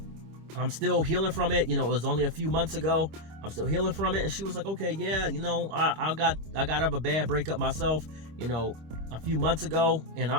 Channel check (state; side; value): late; left; 25 ms